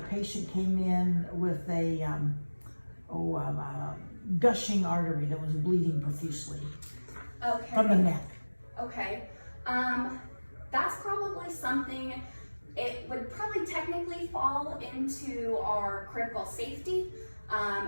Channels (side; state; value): both; inverted; correlation -1.00